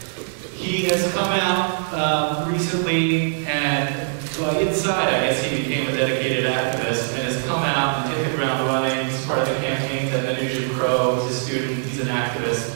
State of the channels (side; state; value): left; silent; digital silence